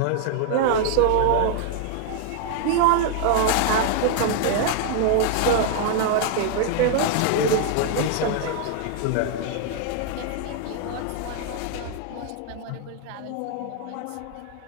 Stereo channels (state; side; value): different; both; correlation 0.00